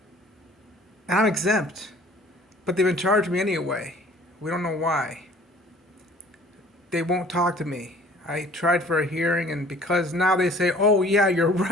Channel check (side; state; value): both; normal; correlation 0.52